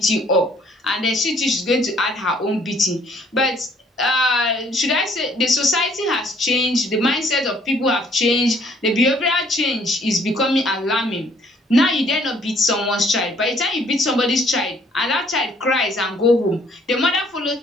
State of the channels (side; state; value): both; normal; correlation 0.62